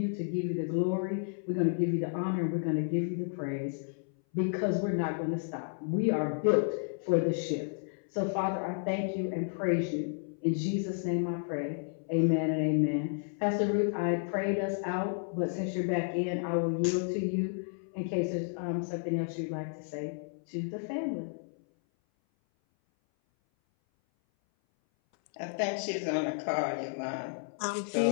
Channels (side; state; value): right; silent; 56 dB below the other